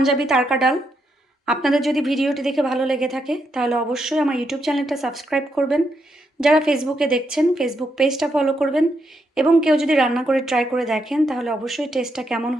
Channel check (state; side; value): normal; both; correlation 0.80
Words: তারকা ডাল। আপনাদের যদি ভিডিওটি দেখে ভালো লেগে থাকে তাহলে অবশ্যই আমার ইউটিউব চ্যানেলটা সাবস্ক্রাইব করবেন। যারা ফেসবুকে দেখছেন ফেসবুক পেজটা ফলো করবেন, এবং কেউ যদি রান্না করে ট্রাই করে দেখেন তাহলে অবশ্যই টেস্টটা কেমন